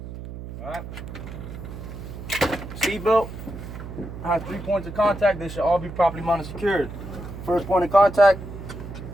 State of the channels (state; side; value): noise; right; hum, 11 dB below the sound